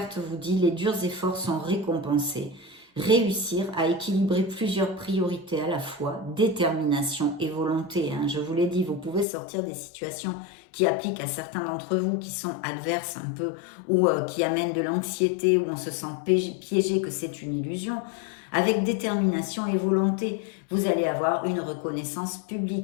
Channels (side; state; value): right; drops out; at 9.2 s